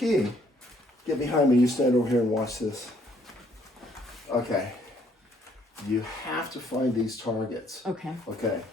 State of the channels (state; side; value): normal; both; correlation 0.66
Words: Get behind me. You stand over here and watch this. Okay. You have to find these targets. Okay. Okay.